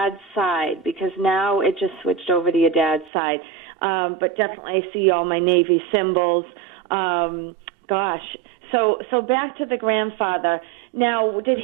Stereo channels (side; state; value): left; drops out; at 3.1 s